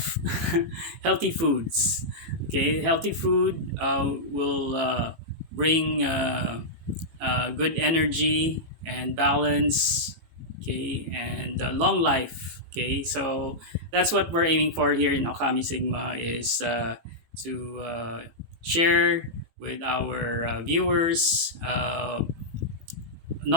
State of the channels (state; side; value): late; left; 18 ms